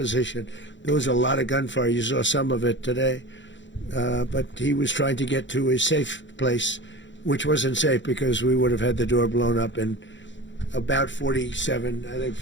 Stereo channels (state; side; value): late; right; 0.54 ms